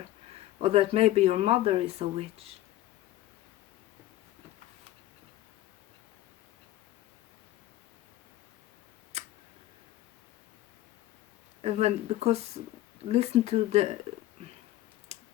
or that maybe your mother is a witch. And because listen to the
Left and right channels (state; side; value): quieter; right; 15.1 dB